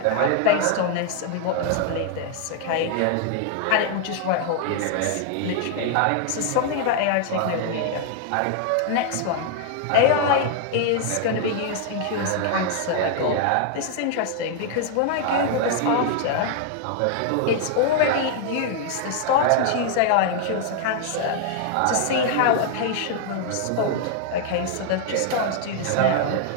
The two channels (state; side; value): different; both; correlation 0.00